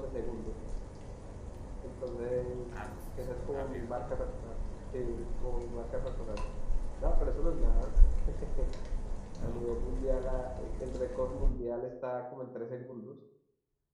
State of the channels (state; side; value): identical; both; correlation 1.00